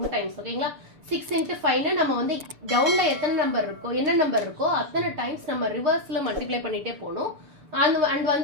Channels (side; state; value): left; late; 6.9 ms